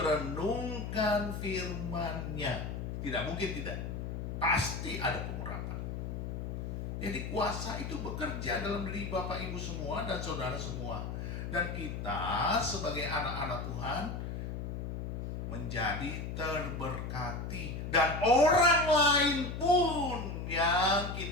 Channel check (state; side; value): noise; left; hum, 5 dB below the sound